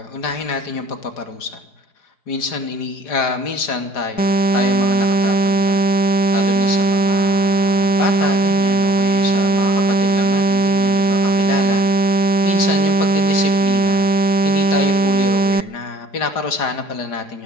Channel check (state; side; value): late; right; 5.0 ms